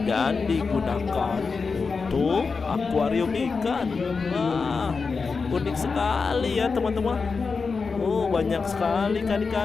dan digunakan untuk akuarium ikan. Wah, unik sekali ya teman-teman. Banyak sekali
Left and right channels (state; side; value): quieter; right; 4.8 dB